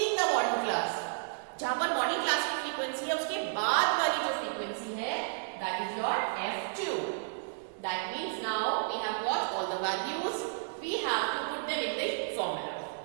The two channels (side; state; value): left; silent; digital silence